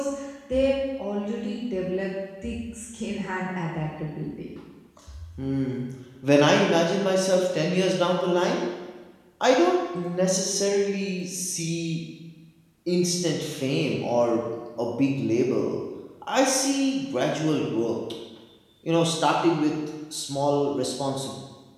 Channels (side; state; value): both; identical; correlation 1.00